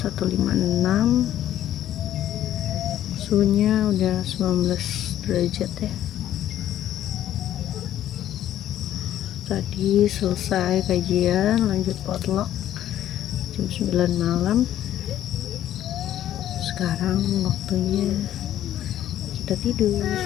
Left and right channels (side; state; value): right; quieter; 11.9 dB